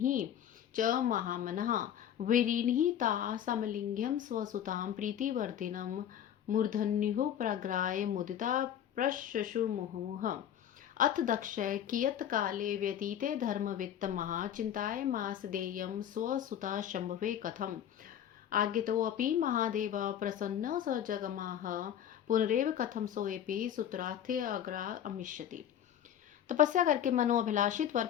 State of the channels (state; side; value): quieter; right; 10.0 dB